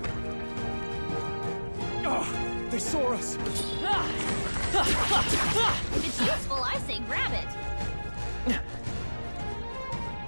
Oh, they saw us. If it's useful, I say grab it.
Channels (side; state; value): both; inverted; correlation -1.00